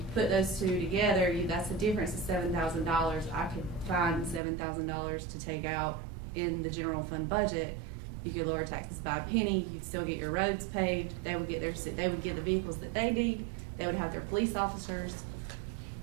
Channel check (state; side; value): drops out; left; at 4.4 s